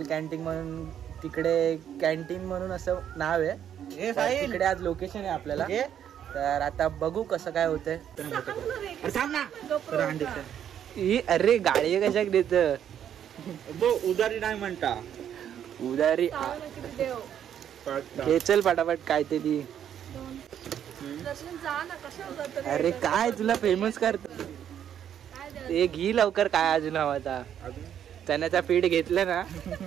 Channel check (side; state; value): left; quieter; 9.6 dB